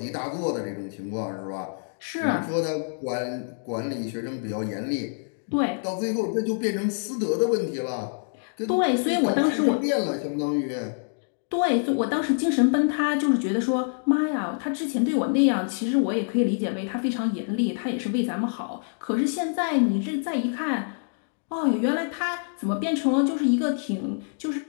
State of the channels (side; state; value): right; silent; digital silence